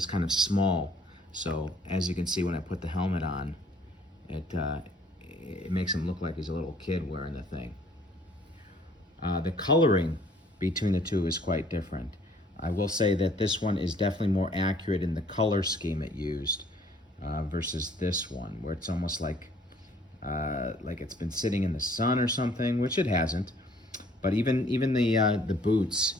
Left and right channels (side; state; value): both; normal; correlation 0.59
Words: kind of small, so as you can see when I put the helmet on, it makes him look like he's a little kid wearing the thing. The coloring between the two is quite different. I will say that this one is definitely more accurate in the color scheme it used versus this one, where it's almost like it's been sitting in the sun or something, which it hasn't. But even the boots,